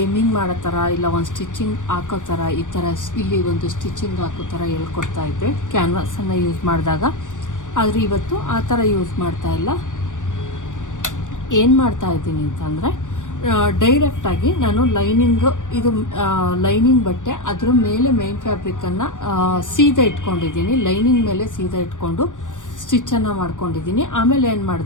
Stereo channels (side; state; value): right; late; 0.87 ms